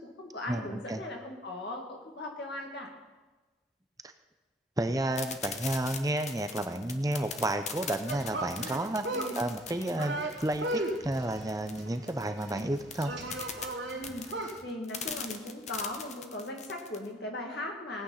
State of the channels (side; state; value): both; normal; correlation 0.59